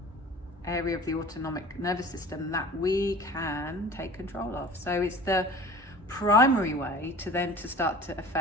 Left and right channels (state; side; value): normal; both; correlation 0.43